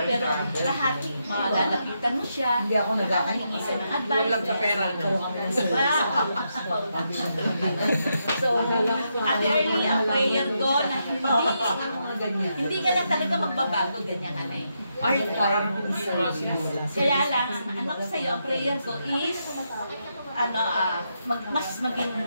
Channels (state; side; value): inverted; both; correlation -0.82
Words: pero lahat malalapitan mo siya, nakakahingi ka ng advice. Walang sa pera. So, Ate Early, ang prayer ko na hindi ka lang talaga magbabago, ganyan ka na eh. Kaya lang, ano ko sa'yo, ang prayer ko is, mas maging